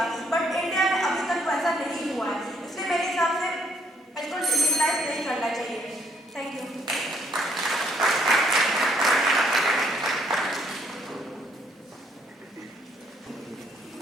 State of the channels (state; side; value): normal; both; correlation 0.68